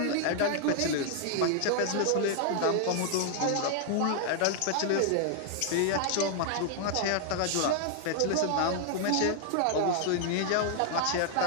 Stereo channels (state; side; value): different; both; correlation 0.00